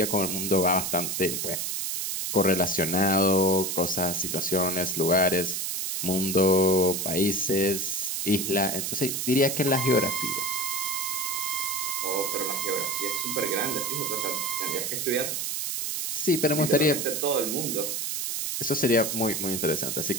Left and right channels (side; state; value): right; noise; hiss, 2 dB below the sound